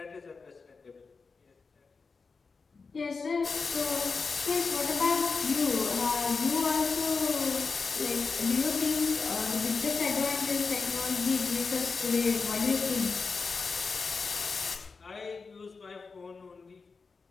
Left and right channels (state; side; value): quieter; right; 4.6 dB